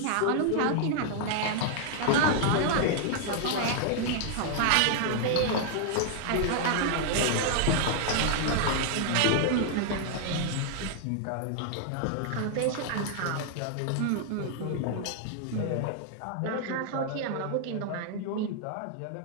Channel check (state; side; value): different; both; correlation 0.00